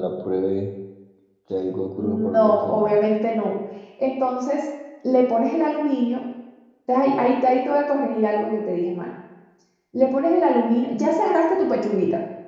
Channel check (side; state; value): both; identical; correlation 1.00